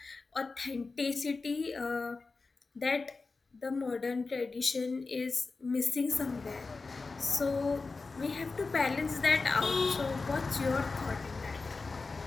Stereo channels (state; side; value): quieter; right; 4.0 dB